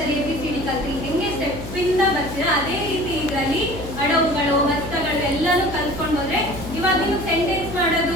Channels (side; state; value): left; noise; hum, 10 dB below the sound